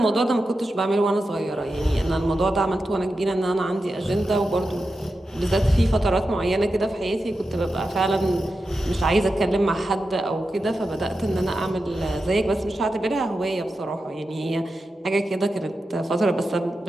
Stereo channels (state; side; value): normal; both; correlation 0.90